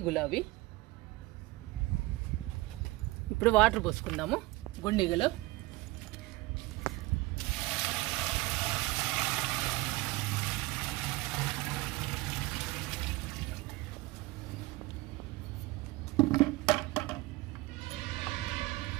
గులాబీ. ఇప్పుడు వాటర్ పోసుకుందాము గుండిగలో.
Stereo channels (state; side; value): quieter; left; 20.7 dB